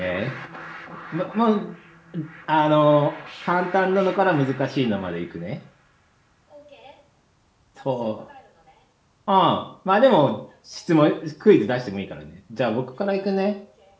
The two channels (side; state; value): both; identical; correlation 1.00